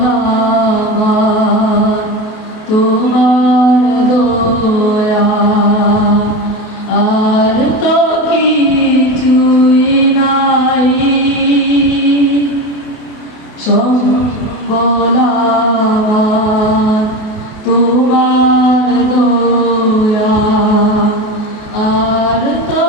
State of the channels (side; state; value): right; late; 28 ms